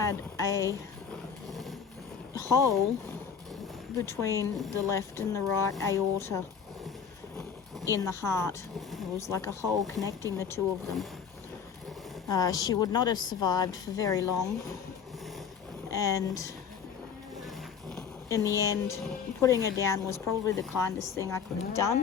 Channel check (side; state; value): right; quieter; 6.9 dB